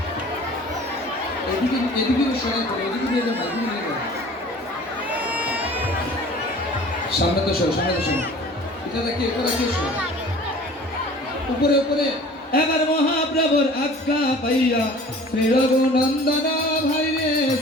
এদিকে এদিকে সরাই করে, এদিকে দিয়ে যাও, এদিকে নিয়ে যাও। সামনে তো সরো, সামনে তো সরো। এটা দেখি, এটা দেখি, উপরে উপরে। এবার মহাপ্রভুর আজ্ঞা পাইয়া শ্রী রঘুনন্দন ভাই রে,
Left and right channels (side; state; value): both; normal; correlation 0.46